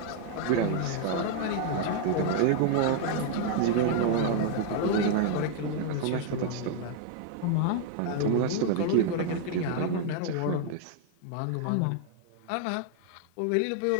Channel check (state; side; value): different; both; correlation 0.00